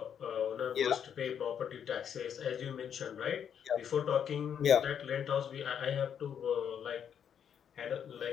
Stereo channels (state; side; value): quieter; right; 8.4 dB